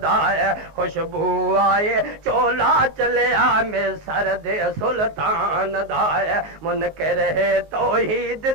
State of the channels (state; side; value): late; left; 19 ms